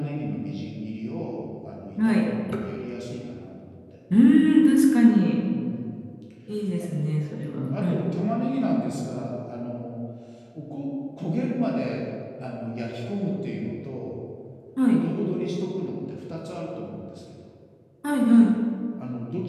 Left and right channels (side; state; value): both; identical; correlation 1.00